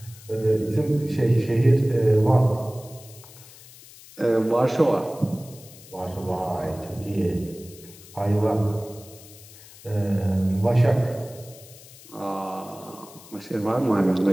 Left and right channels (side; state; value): left; noise; hiss, 20 dB below the sound